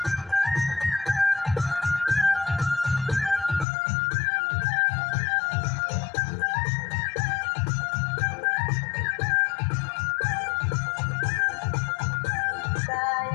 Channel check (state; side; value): drops out; right; at 3.7 s